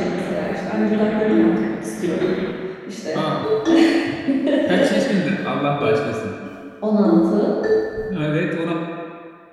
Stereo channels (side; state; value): both; identical; correlation 1.00